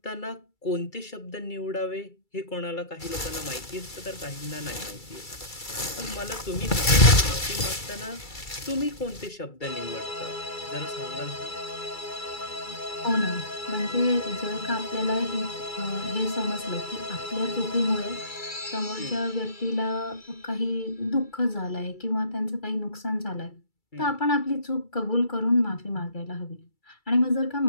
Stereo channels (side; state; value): right; late; 2.3 ms